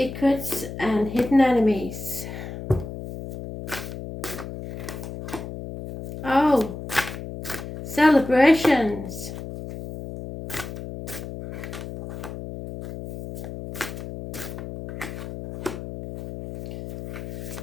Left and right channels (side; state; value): left; noise; hum, 9 dB below the sound